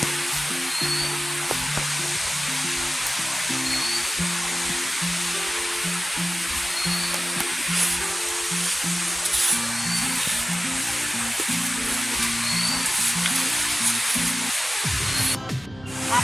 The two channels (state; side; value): normal; both; correlation 0.96